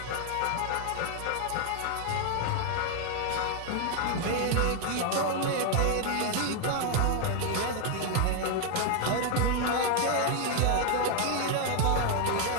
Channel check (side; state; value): both; different; correlation 0.00